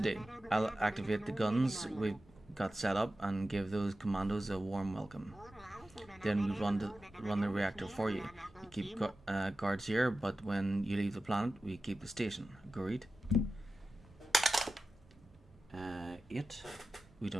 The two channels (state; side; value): normal; both; correlation 0.94